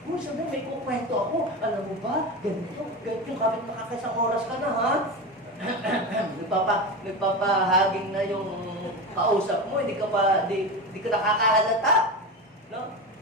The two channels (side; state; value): both; normal; correlation 0.23